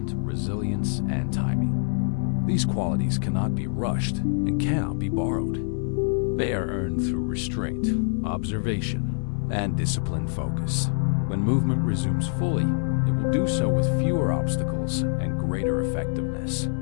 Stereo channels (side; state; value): right; silent; digital silence